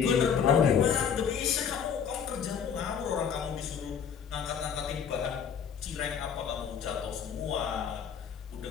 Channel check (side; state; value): right; quieter; 7.4 dB